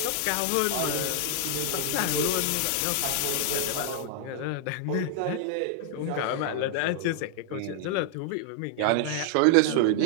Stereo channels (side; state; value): both; different; correlation -0.01